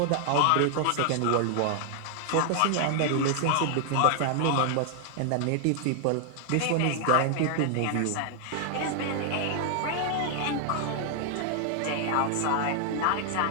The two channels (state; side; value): different; both; correlation 0.00